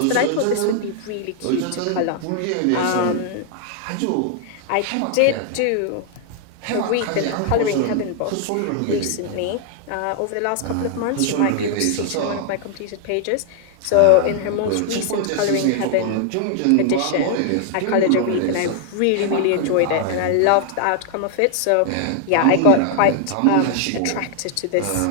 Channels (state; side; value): different; both; correlation 0.00